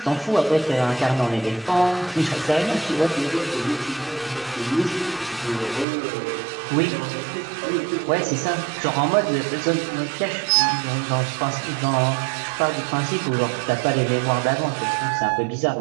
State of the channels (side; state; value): left; drops out; at 5.9 s